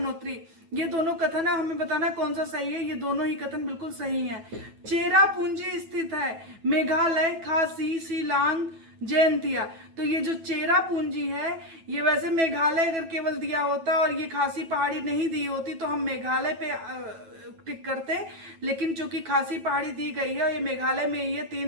ये दोनों कथन है, हमें बताना कौन सा सही है। ये दोनों ही कथन बिल्कुल सही है। चेरापूंजी स्थित है मेघालय, खासी, शिलांग, जयंतिया। तो ये जो चेरापूंजी है, ये वैसे मेघालय अगर केवल दिया होता और ये खासी पहाड़ी नहीं दी होती तो हम मेघालय पे टिक करते, लेकिन चूंकि खासी पहाड़ी दी गई है और ये मेघालय में ये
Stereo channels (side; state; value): left; late; 9.1 ms